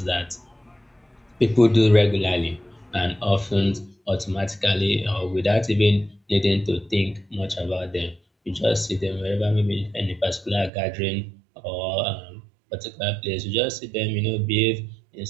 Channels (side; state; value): left; drops out; at 10.7 s